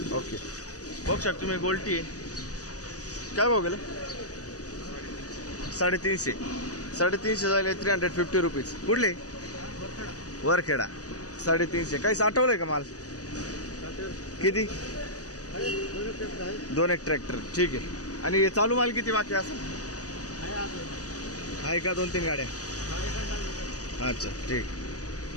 ओके. बघू शकतो तुम्ही. गोल्टी आहे. काय भाव गेलं. 350. 350 झाले 350 रुपीज. कुठले? वरखेडा. 350. काही साठवलंय का माल? किती? 2 एक ट्रॅक्टर. ठीक आहे. आणि चालू माल किती बाकी असं आहे का? 2-3 गाड्या. अच्छा ठीक.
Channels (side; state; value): right; late; 0.67 ms